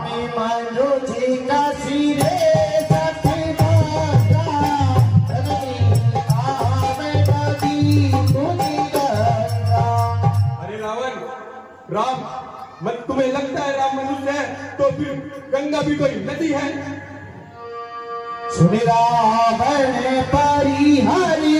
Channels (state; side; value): identical; both; correlation 1.00